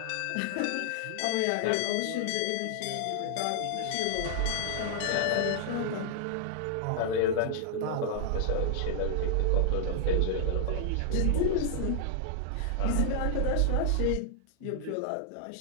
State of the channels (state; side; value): different; both; correlation -0.01